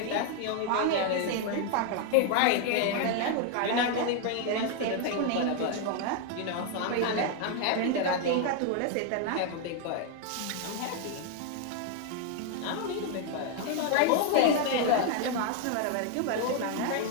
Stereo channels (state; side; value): different; both; correlation 0.00